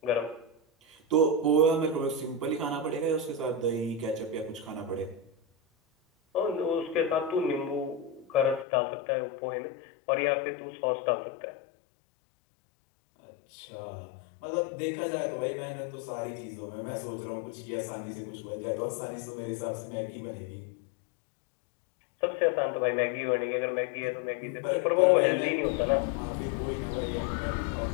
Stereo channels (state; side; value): drops out; right; at 8.7 s